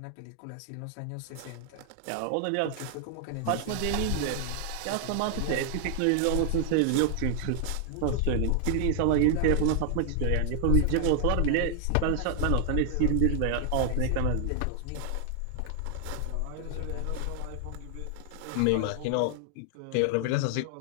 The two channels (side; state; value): both; different; correlation 0.00